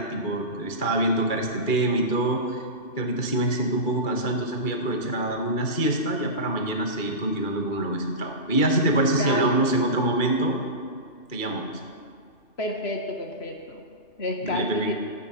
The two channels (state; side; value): late; right; 2.4 ms